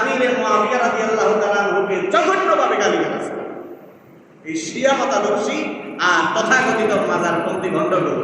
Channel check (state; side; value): identical; both; correlation 1.00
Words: মুআবিয়া রাদিয়াল্লাহু তাআলা আনহুকে জঘন্যভাবে গালি দিয়েছে। এই শিয়া মতাদর্শী আর তথাকথিত মাজারপন্থী ভণ্ডগুলো।